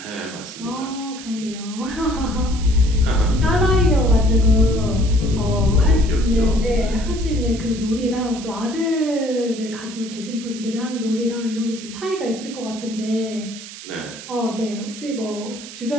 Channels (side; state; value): right; noise; hiss, 14 dB below the sound